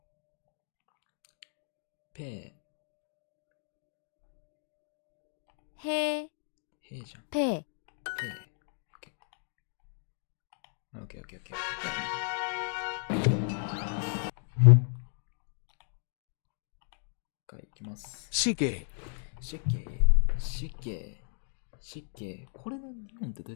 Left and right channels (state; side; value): silent; right; digital silence